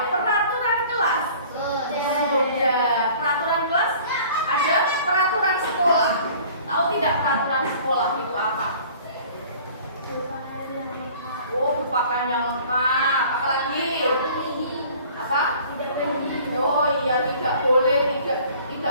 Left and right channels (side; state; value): both; inverted; correlation -0.49